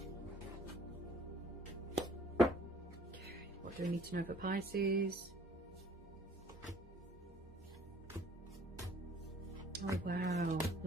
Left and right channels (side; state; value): both; normal; correlation 0.56